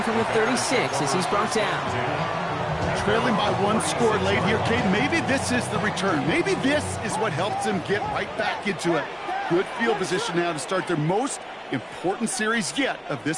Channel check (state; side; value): identical; both; correlation 1.00